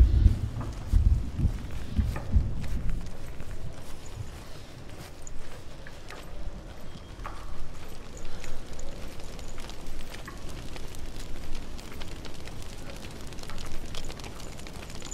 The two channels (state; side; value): identical; both; correlation 1.00